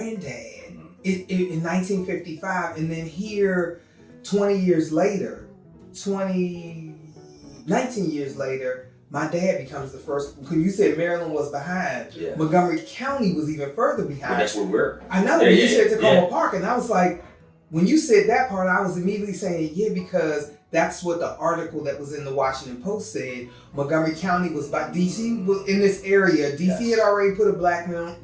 in 1955, and then here 19 years later, my dad becomes the first. When you said Maryland was behind, Montgomery County was even further behind. Well, that's where we're. I know. You said Tacoma Park, and I was like, when you said that part, I was immediately saying, because that's what the article that was in the Washington Post said. Montgomery County was by DC was in this area. DC had already put a black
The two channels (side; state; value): both; identical; correlation 1.00